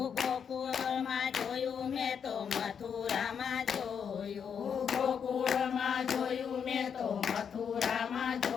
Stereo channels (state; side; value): quieter; right; 7.2 dB